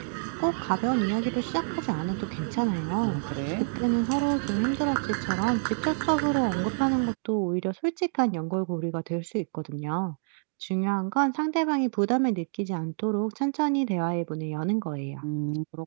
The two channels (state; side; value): silent; left; digital silence